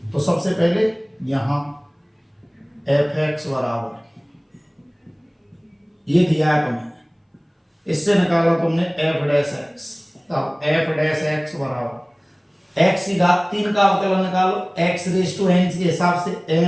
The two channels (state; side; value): identical; both; correlation 1.00